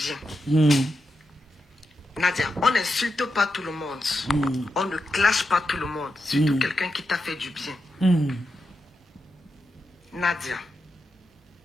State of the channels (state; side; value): normal; both; correlation 0.87